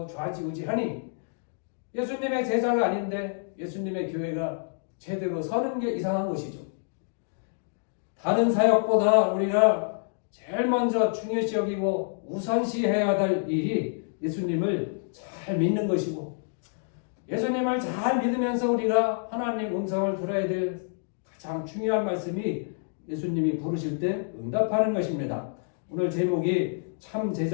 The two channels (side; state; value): right; silent; digital silence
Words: 좌지우지하니 예수님의 제자가 아닌데 예수님의 교회가 제대로 서는 게 이상한 것이죠. 다른 사역보다 우리가 제일 먼저 중요시 여기고 우선시해야 될 일이 예수님을 잘 믿는 것이고, 예수님을 잘 믿으면서 우리가 하나님 음성을 들어야 될 가장 중요한 말씀이 예수님이 부르실 때 응답하는 것입니다. 오늘 제목이 참